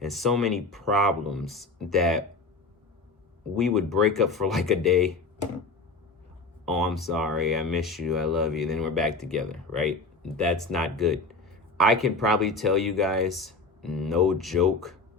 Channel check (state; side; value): quieter; right; 3.6 dB